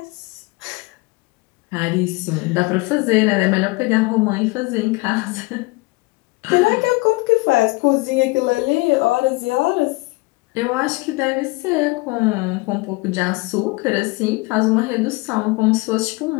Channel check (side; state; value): right; quieter; 24.2 dB